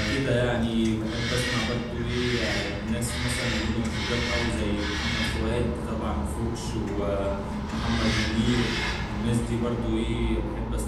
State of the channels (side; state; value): both; identical; correlation 1.00